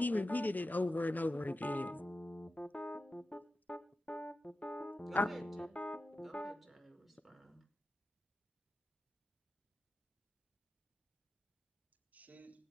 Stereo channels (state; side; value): normal; both; correlation 0.92